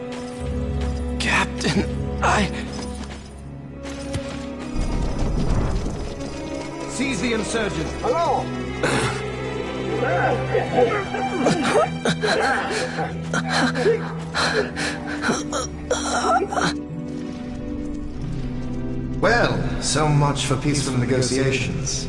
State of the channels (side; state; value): both; identical; correlation 1.00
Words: Captain, Seize the insurgents! Hello! Well, so much for peaceful negotiations.